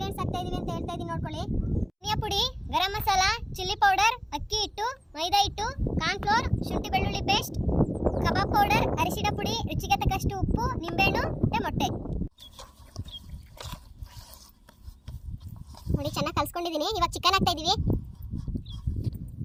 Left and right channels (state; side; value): identical; both; correlation 1.00